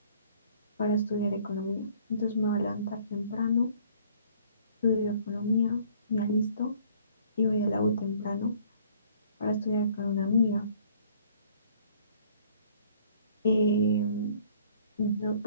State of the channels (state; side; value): inverted; both; correlation -0.58